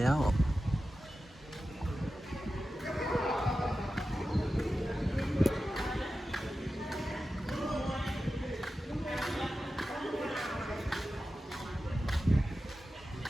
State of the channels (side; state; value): both; normal; correlation 0.93